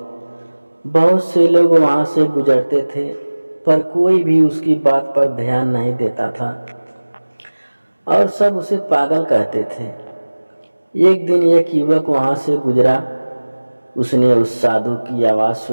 बहुत से लोग वहां से गुजरते थे, पर कोई भी उसकी बात पर ध्यान नहीं देता था और सब उसे पागल कहते थे। एक दिन एक युवक वहां से गुजरा। उसने उस साधु की आवाज़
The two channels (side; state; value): both; inverted; correlation -1.00